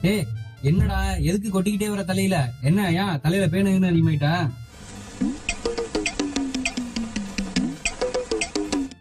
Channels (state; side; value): identical; both; correlation 1.00